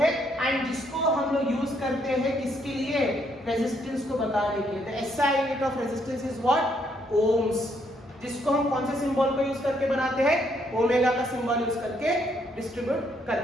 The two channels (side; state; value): both; normal; correlation 0.72